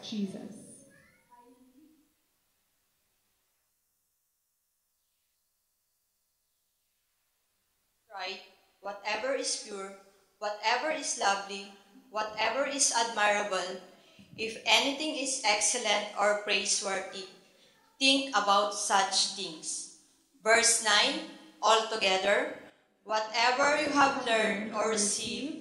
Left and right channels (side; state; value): both; identical; correlation 1.00